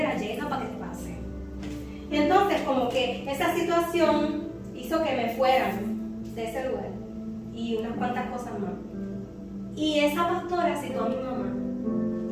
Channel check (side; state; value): both; identical; correlation 1.00